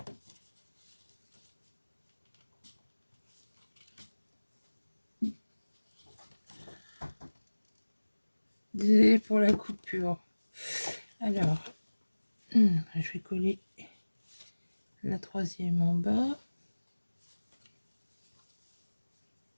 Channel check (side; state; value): both; inverted; correlation -1.00